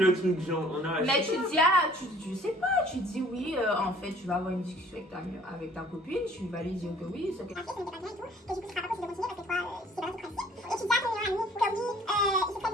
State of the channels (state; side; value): normal; both; correlation 0.54